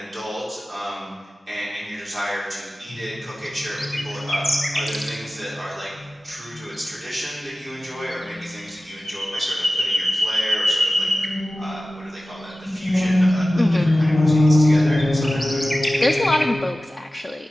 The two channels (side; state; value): both; normal; correlation 0.96